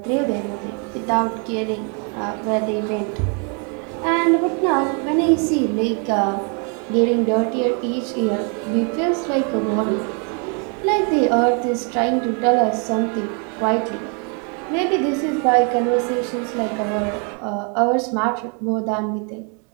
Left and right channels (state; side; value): quieter; left; 37.5 dB